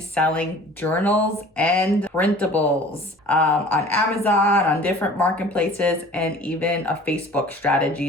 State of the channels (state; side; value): normal; both; correlation 0.46